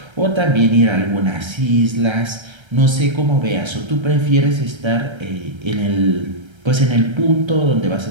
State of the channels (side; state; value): left; late; 1.3 ms